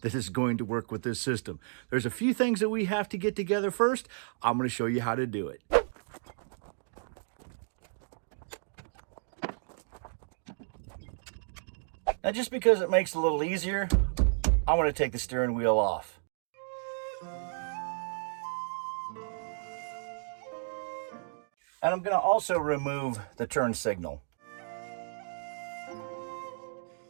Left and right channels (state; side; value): silent; left; digital silence